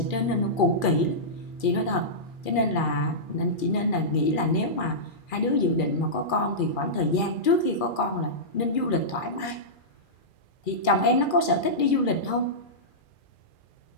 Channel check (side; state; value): right; late; 2.4 ms